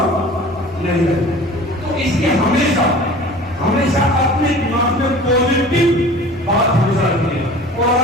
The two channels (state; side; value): normal; both; correlation 0.43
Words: नहीं है। तो इसलिए हमेशा अपने दिमाग में पॉजिटिव बात हमेशा रखनी है, और